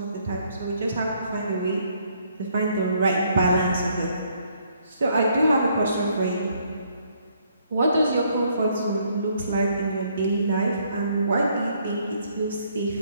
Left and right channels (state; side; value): inverted; both; correlation -0.68